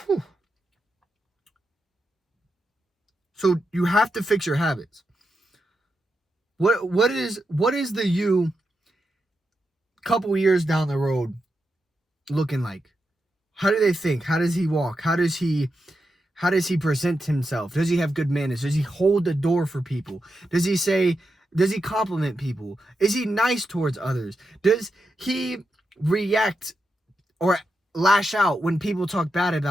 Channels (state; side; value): normal; both; correlation 0.86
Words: Whew. So you have to fix your habits. What is the you couple years down the road looking like? How do they think? How does he walk? How does he present himself? Does he have good manners? Does he hold the door for people? Does he compliment people? Is he nice towards others? Does he react or lash out when people talk bad